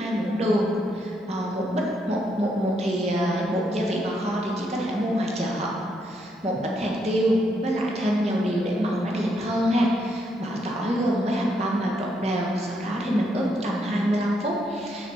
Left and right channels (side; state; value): both; normal; correlation 0.76